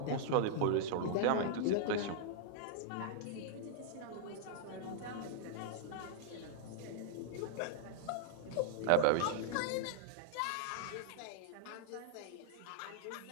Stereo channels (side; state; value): both; different; correlation -0.01